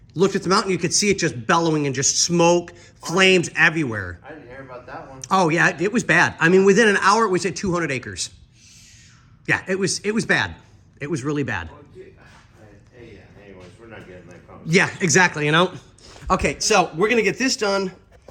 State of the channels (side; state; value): both; identical; correlation 1.00